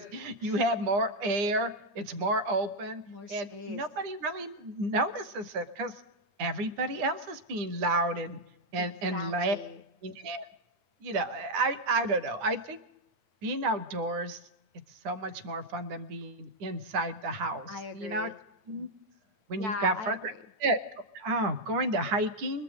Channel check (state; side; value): late; left; 9.9 ms